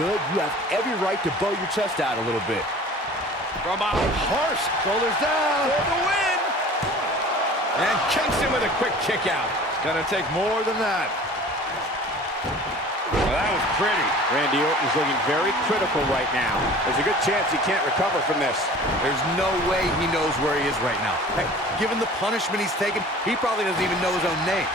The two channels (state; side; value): normal; both; correlation 0.44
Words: you have every right to bow your chest out a little bit. From out harsh, shoulders down. For the win! And Kingston with a quick kick out. It's gonna take more than that. Well, that was pretty. Randy Orton's looking very critical right now. There's a good chance he can't recover from this. There's no way he knows where he is right now. Hey, given the punishment he's taken, he probably doesn't even know his own name.